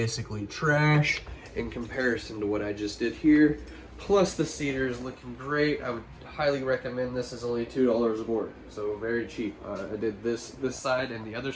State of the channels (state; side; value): identical; both; correlation 1.00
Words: trash in comparison to what I just did here. Plus the cedar is looking great. I would highly recommend this. Is only $2 a board, so very cheap. I did this side and the other